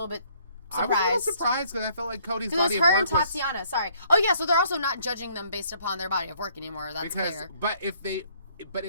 bit surprised. I was a little surprised because I felt like Cody's body of work was... Because it was her and Tatiana, sorry. Oh, yeah, so they're also not judging them based upon their body of work anymore. That's clear. But if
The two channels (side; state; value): both; inverted; correlation -0.63